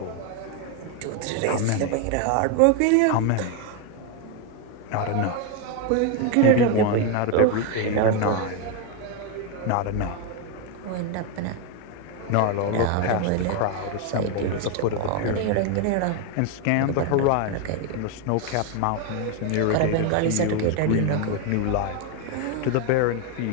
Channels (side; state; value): both; different; correlation 0.01